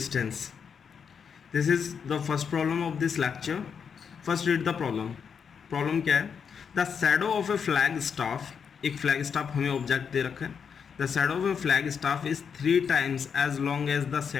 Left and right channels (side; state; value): right; quieter; 6.7 dB